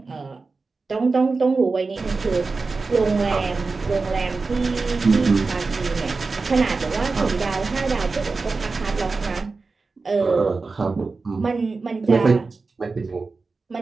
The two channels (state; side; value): quieter; left; 4.0 dB